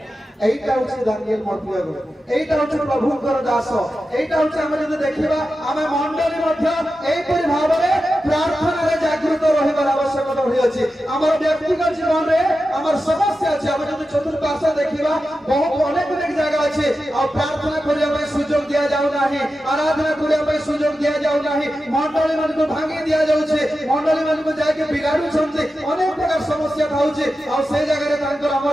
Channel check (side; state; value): both; normal; correlation 0.91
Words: एटा होछि दानियल मर्तिया एटा होछि प्रभुकर दास एटा होछि हम जदि देखिबा हमें मंडली मध्य एई परि भाव रे प्रार्थना रे जागृत रहिबार आवश्यकता होई अछि हमर व्यक्तिगत जीवन रे हमर समस्या अछि हम जदि चतुर्पार्श्व देखिबा बहुत अनेक जगह अछि आ प्रार्थना करिया पय सुयोग दिया जाउ नाही आराधना करिया पय सुयोग दिया जाउ नाही मंडली मन को भांगी दिया जाउ छै मंडली मन को जाके बिगाडु छथि अनेक प्रकार समस्या थाउछि आ से जगह रे तांकर